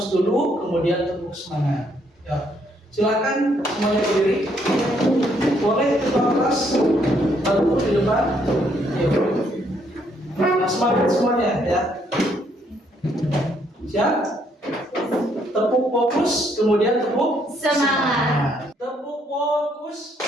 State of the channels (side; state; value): both; normal; correlation 0.70